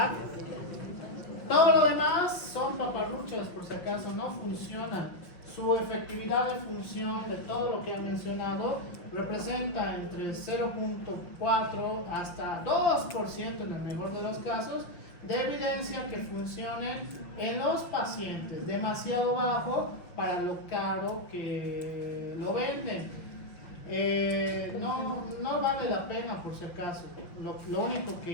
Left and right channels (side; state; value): right; late; 6.0 ms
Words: Todo lo demás son paparruchas, por si acaso, no funciona. Su efectividad de función de todo lo que he mencionado representa entre 0.4 hasta 2% en el mejor de los casos de evidencia que funcionen en los pacientes, demasiado bajo para lo caro que lo venden. No vale la pena, por si acaso. Lo único